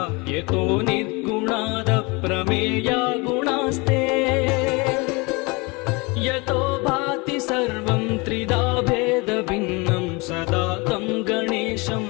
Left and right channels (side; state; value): right; quieter; 27.1 dB